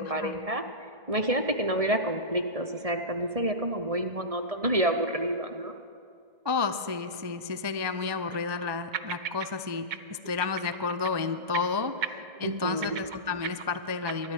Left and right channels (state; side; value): late; left; 1.2 ms